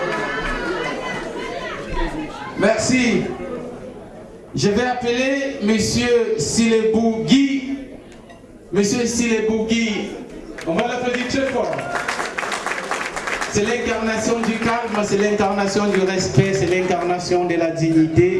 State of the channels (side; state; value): both; identical; correlation 1.00